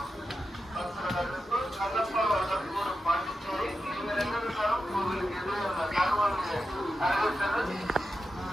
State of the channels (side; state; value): both; normal; correlation 0.90